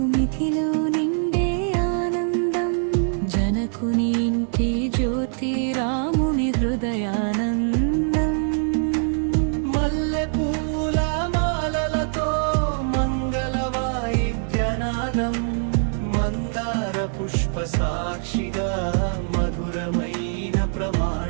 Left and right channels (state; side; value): silent; left; 63 dB below the other